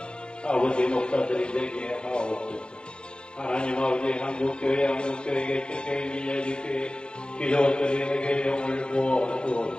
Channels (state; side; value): late; right; 0.051 ms